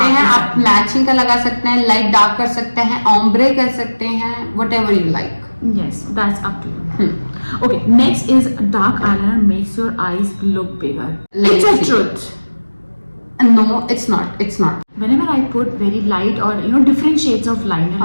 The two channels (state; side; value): inverted; both; correlation -1.00